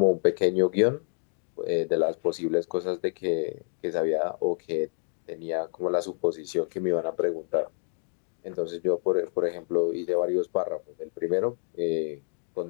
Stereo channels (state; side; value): silent; right; digital silence